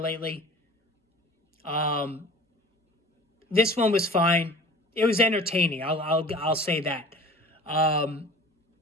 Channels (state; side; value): normal; both; correlation 0.43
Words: This one was fine. It was entertaining. I'll say that. The